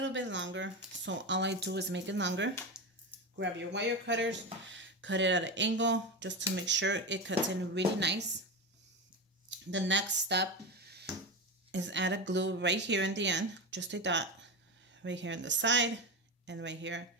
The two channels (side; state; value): both; normal; correlation 0.18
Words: bit longer. So all I do is make it longer. Grab your wire cutters, cut it at an angle just to make sure it cuts in really nice. The next step is add a glue right here in the end, just a dot right here on the side and right here